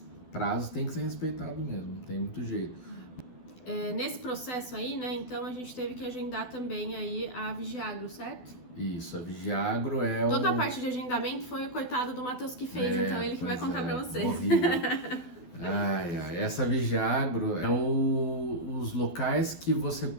prazos tem que ser respeitado mesmo, não tem muito jeito. Nesse processo aí, né, então a gente teve que agendar também aí a Vigiagro, certo? Isso, a Vigiagro é Toda a parte de agendamento foi o coitado do Matheus que fez, então ele que vai contar pra vocês. Essa Vigiagro é os locais que você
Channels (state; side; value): late; right; 12 ms